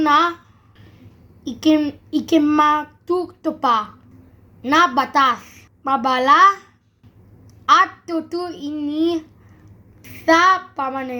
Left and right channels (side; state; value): both; identical; correlation 1.00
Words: ikimatutupad na batas, mabala at tutuin sa